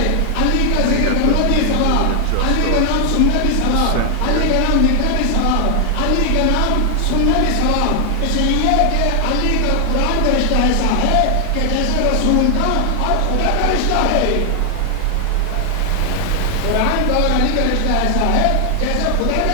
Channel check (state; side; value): different; both; correlation 0.00